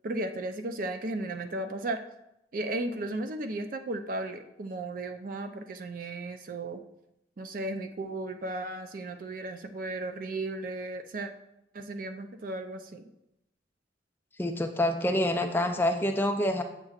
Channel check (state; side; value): normal; both; correlation 0.50